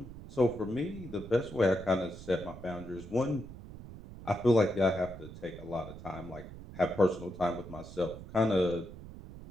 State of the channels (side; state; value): right; noise; rumble, 14 dB below the sound